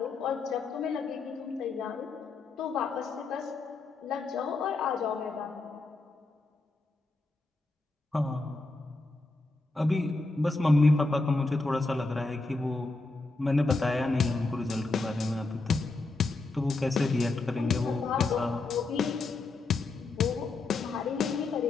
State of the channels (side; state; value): right; quieter; 3.4 dB